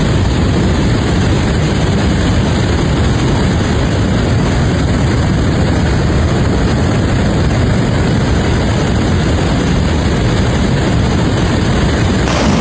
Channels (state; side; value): identical; both; correlation 1.00